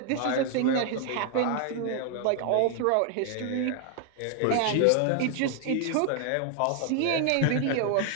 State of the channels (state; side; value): different; both; correlation 0.00